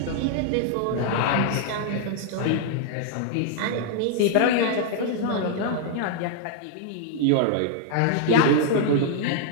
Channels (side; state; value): both; different; correlation -0.01